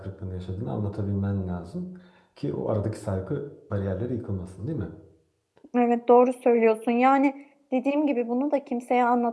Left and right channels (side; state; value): both; identical; correlation 1.00